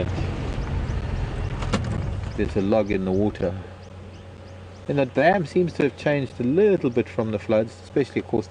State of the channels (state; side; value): identical; both; correlation 1.00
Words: there's a log in the water. And the dam seems to have changed a little bit from the floods, especially of course